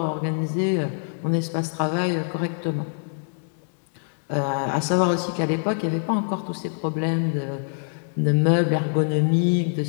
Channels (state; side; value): silent; right; digital silence